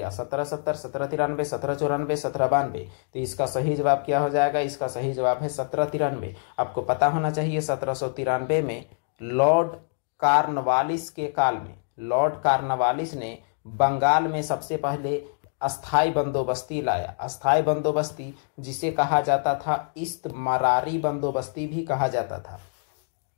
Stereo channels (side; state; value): right; silent; digital silence